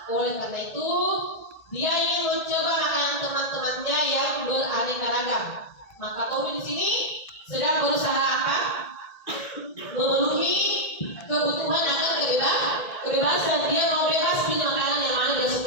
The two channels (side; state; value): right; late; 1.8 ms